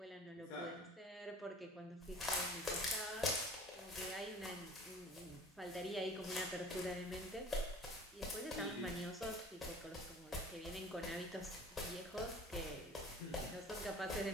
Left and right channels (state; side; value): normal; both; correlation 0.46